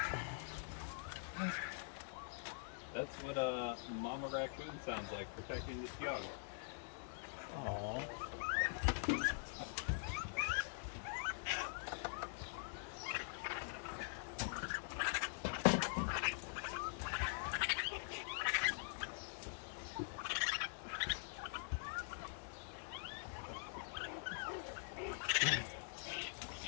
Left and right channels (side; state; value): right; silent; digital silence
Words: That's what a mama raccoon sounds like, protecting this young.